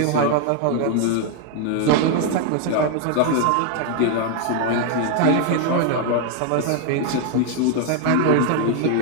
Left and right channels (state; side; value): different; both; correlation 0.01